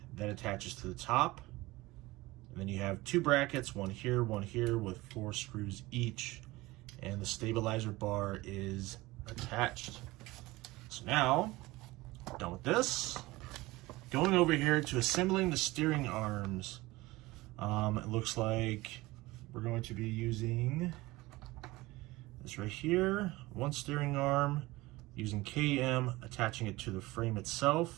that attaches to the top. And then you have two brackets, one here with 4 screws each, and the stabilizer bar is attached. So now, done with this, going over here to assembling the steering arms. It looks like we're going to be using this right here, one steering arm, using KM, attaching it to the frame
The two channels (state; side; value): quieter; left; 20.2 dB